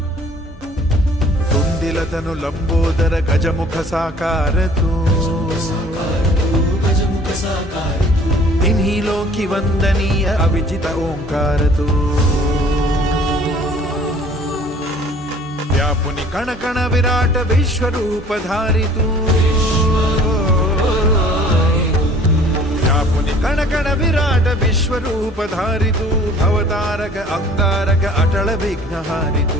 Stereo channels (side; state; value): both; normal; correlation 0.52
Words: तुंदिलतनु लंबोदर गजमुख साकार तू तिन्ही लोकी वंदनीय अविजित ओंकार तू व्यापुनि कण कण विराट विश्वरूप धारी तू व्यापुनि कण कण विराट विश्वरूप धारी तू भवतारक अंगारक अटल विघ्नहारी